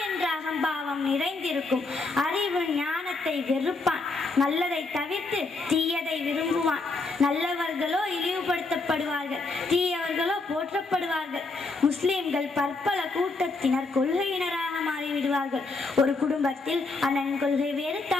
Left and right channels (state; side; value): quieter; right; 3.6 dB